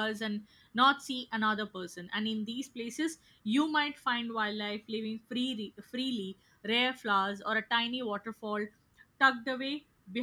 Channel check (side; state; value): both; identical; correlation 1.00